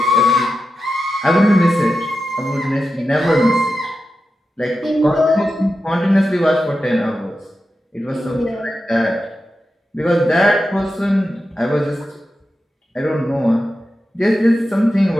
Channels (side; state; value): both; normal; correlation 0.90